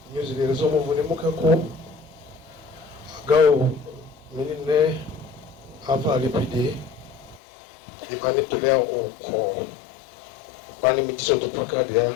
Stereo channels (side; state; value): right; drops out; at 7.4 s